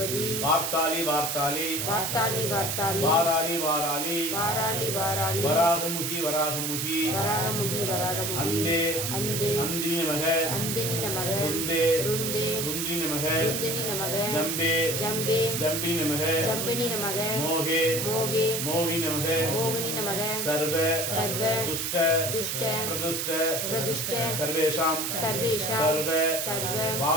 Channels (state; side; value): noise; right; hiss, 1 dB below the sound